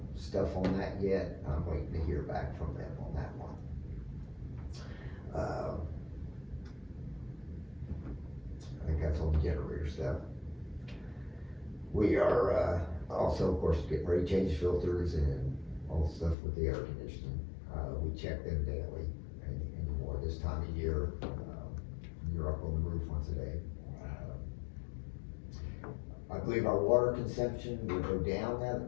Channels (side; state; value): right; drops out; at 16.4 s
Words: stuff on that yet. I'm waiting to hear back from them on that one. I think that's all the generator stuff. We are also, of course, getting ready to change filters and all the stuff with the air conditioning. We check them daily anymore this time of year. You're up on the roof once a day. I believe our water consumption will go down now